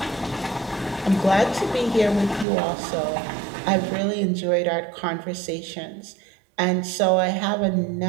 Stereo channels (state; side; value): drops out; left; at 2.5 s